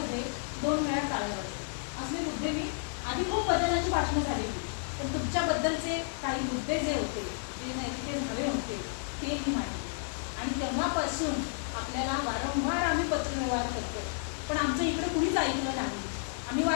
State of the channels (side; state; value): right; silent; digital silence